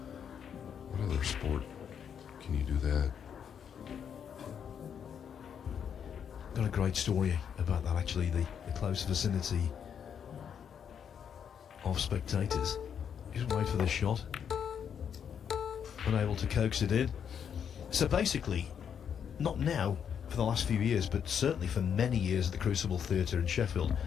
What other sport can you do that? Got a great story about that, actually, the close vicinity of spectators. Just wait for this shot. Unable to coax it in. So basically, not now for the last few years, but certainly for many years at the Crucible Theatre in Sheffield,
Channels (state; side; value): quieter; right; 7.9 dB